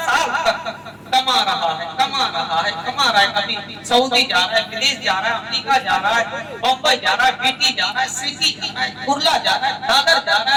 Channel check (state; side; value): identical; both; correlation 1.00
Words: साल तक कमा रहा है, कमा रहा है, कमा रहा है, कभी सऊदी जा रहा है, विदेश जा रहा है, अमेरिका जा रहा है, बम्बई जा रहा है, बीटी जा रहा है, सिटी जा रहा है, कुर्ला जा रहा है, दादर जा रहा